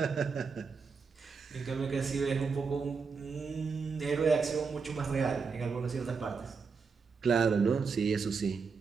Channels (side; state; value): left; quieter; 5.2 dB